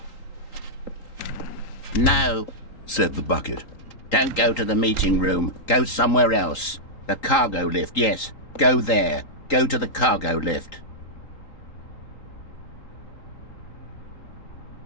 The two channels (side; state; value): right; late; 3.8 ms